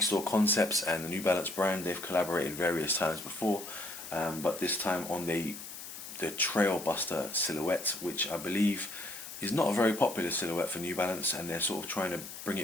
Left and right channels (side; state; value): left; noise; hiss, 11 dB below the sound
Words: store Concepts and the New Balance brand. They've collaborated various times before, but this time on the TrailBuster silhouette, which I believe is not a very popular silhouette for New Balance, and they're sort of trying to bring